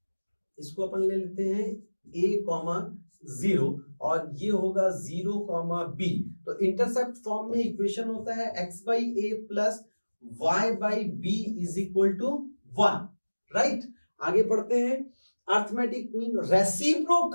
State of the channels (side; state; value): both; inverted; correlation -1.00